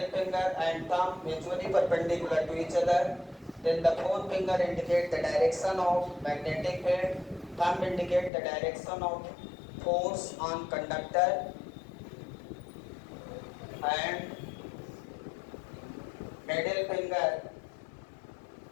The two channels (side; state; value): right; drops out; at 8.3 s